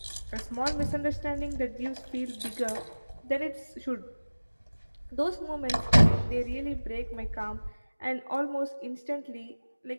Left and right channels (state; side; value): inverted; both; correlation -1.00